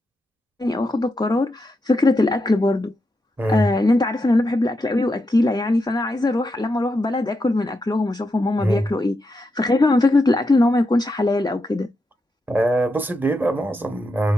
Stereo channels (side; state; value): both; normal; correlation 0.85